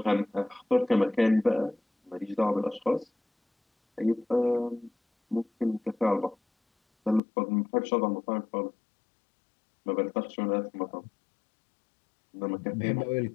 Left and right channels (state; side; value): drops out; right; at 7.2 s